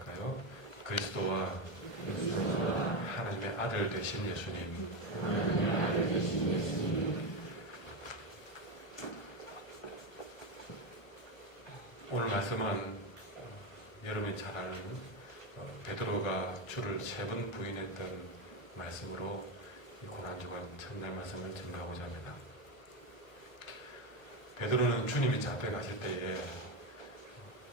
그리스도와 하나님의 아들 되신 예수님. 오늘 말씀은 여러분이 잘 아는 베드로가 주를 3번 부인했던 말씀으로 이 고난주간 첫날 말씀을 증거하고자 합니다. 베드로는 주님이 잡혀가실 때에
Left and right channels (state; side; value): late; right; 1.2 ms